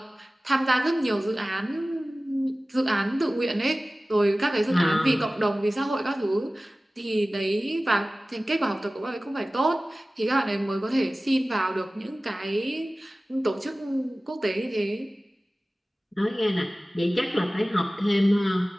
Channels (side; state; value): both; normal; correlation 0.97